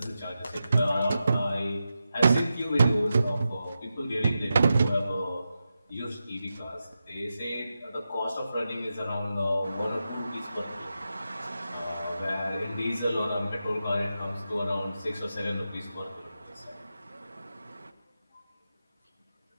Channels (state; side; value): inverted; both; correlation -0.90